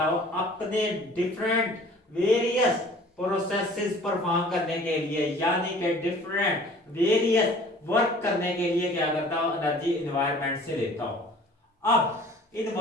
हो अपने डिफरेंट वेरियस प्रोसेसेस परफॉर्म करने के लिए, यानी कि डिफरेंट वेरियस वर्क करने के लिए क्या करता हो, एनर्जी एनवायरनमेंट से लेता हो। अब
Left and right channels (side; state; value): both; normal; correlation 0.49